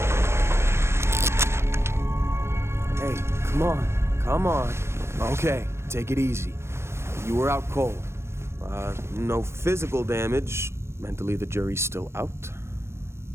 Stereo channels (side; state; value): left; late; 0.13 ms